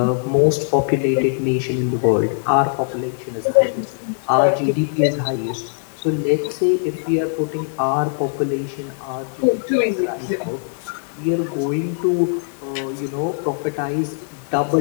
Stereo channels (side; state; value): right; silent; digital silence